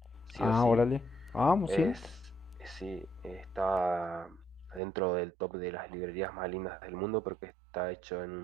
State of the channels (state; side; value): drops out; left; at 4.8 s